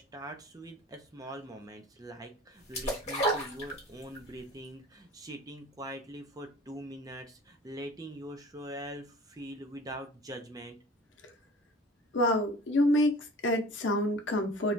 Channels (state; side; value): normal; both; correlation 0.43